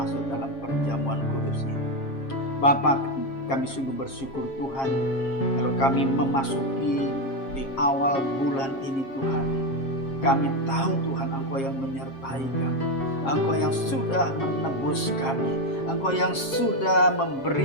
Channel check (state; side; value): late; right; 7.5 ms